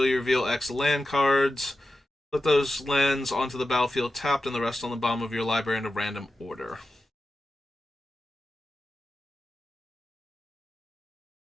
you reveal X land cards. Put those lands onto the battlefield tapped and the rest on the bottom of your library in a random order.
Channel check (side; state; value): both; normal; correlation 0.92